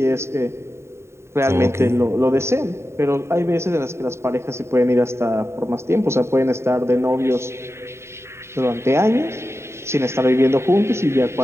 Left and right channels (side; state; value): left; late; 0.13 ms